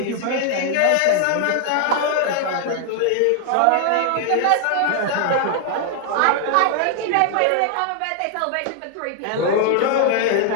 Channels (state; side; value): different; both; correlation 0.00